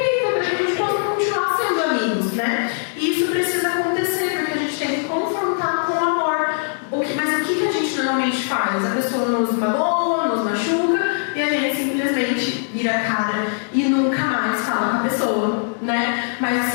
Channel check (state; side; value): silent; right; digital silence